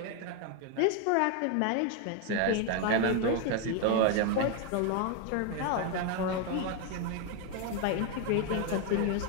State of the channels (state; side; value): different; both; correlation 0.01